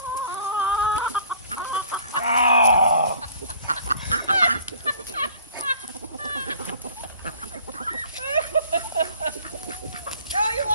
Oh! Oh, you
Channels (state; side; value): inverted; both; correlation -0.51